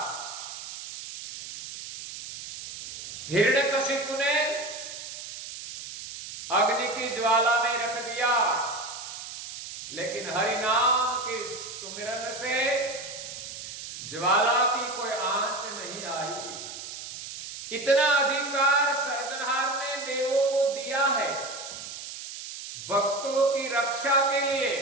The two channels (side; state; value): right; noise; hiss, 10 dB below the sound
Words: हिरण्यकशिपु ने अग्नि की ज्वाला में रख दिया, लेकिन हरि नाम के सुमिरन से ज्वाला की कोई आंच नहीं आई। इतना अधिकार सर्जनहार ने देवों को दिया है भक्तों की रक्षा के लिए,